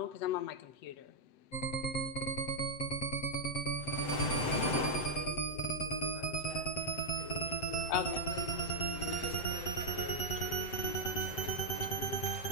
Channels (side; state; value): right; late; 7.9 ms